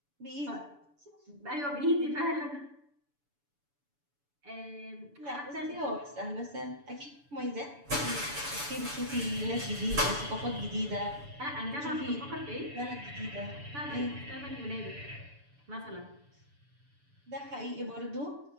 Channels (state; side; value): late; left; 6.9 ms